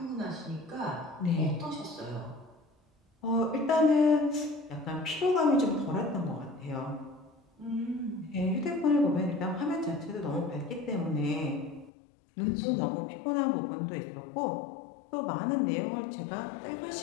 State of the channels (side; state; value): right; drops out; at 11.9 s